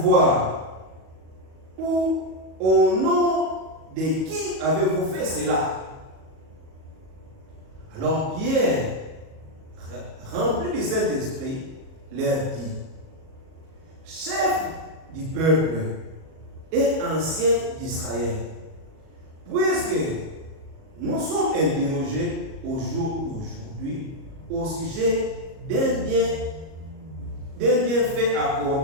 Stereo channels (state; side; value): late; left; 37 ms